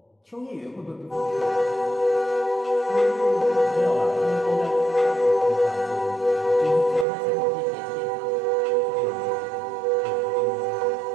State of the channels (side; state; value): left; drops out; at 7.1 s